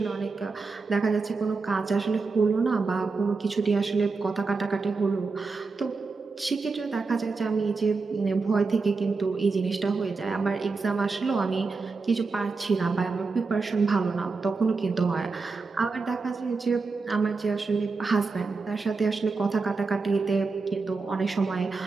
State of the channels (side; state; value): left; quieter; 4.2 dB